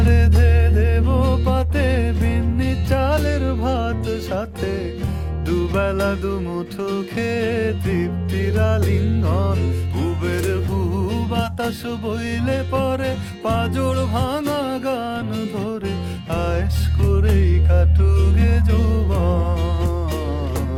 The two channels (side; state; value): both; identical; correlation 1.00